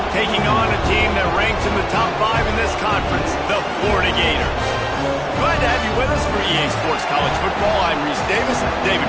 taking on a team that ranks in the top 5 in this conference, the Florida Gators. Glad to have you with us for EA Sports College Football. I'm Reese Davis, David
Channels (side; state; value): both; identical; correlation 1.00